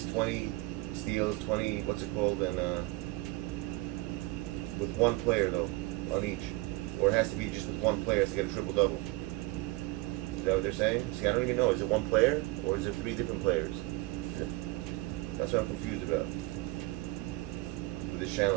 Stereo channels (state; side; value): quieter; left; 20.9 dB